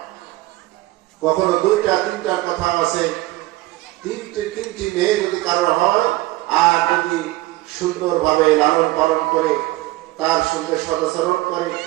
কখনো 2টা 3টার কথা আছে, 3টি মেয়ে যদি কারো হয়, আর যদি সুন্দরভাবে লালন পালন করে, তার সঙ্গে সদাচরণ করে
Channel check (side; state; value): left; quieter; 18.6 dB